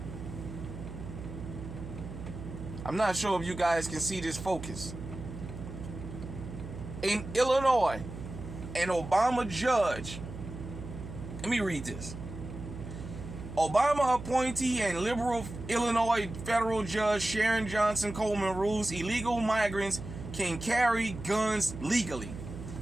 I'm not sure if you guys can see this focus. In Illinois, an Obama judge. Let me read this. Obama appointee and liberal Illinois federal judge Sharon Johnson Coleman rules illegal migrants can carry guns legally.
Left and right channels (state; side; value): noise; right; hum, 10 dB below the sound